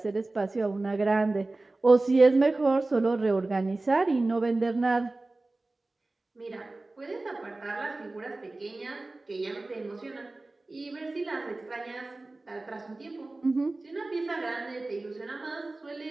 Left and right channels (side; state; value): left; quieter; 3.1 dB